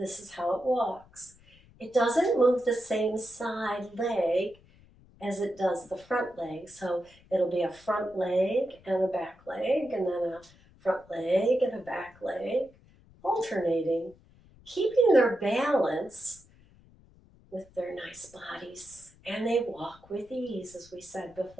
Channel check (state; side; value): noise; left; rumble, 26 dB below the sound